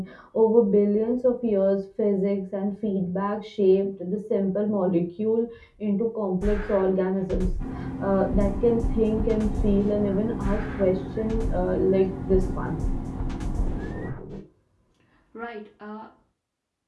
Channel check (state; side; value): identical; both; correlation 1.00